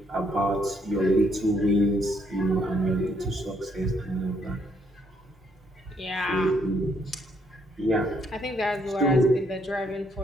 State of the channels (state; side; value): normal; both; correlation 0.71